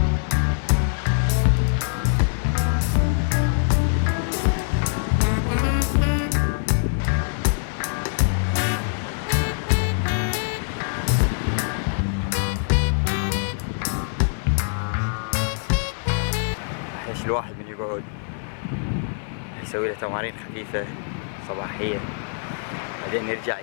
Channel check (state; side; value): silent; right; 60 dB below the other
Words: الواحد من يقعد يسوي له تمارين خفيفة صباحية، بعدين يرجع